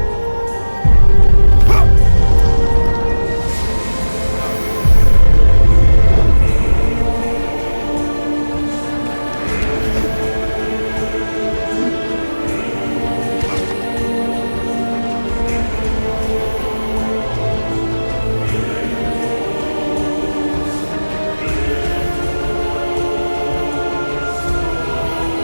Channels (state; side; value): inverted; both; correlation -1.00